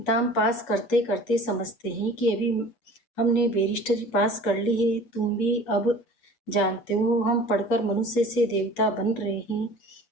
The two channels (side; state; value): right; late; 7.8 ms